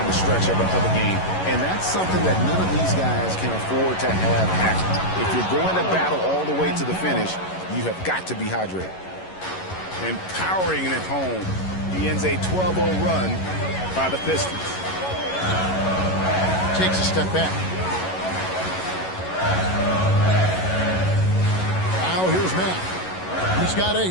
the stretch of a game. And that's something that none of these guys can afford to have happen. If you're going to battle all the way to the finish, you have got to be hydrated. And powering it home, he ends a 12-0 run by the Pistons. Takes a step back. Now here's Matt. He's got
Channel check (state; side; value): late; right; 11 ms